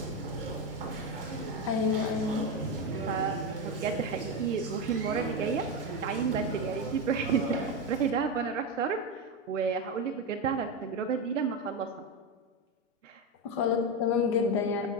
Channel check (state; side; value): normal; both; correlation 0.12